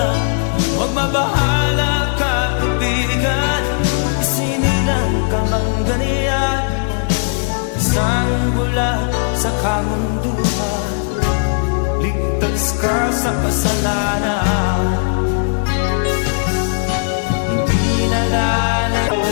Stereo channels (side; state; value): right; silent; digital silence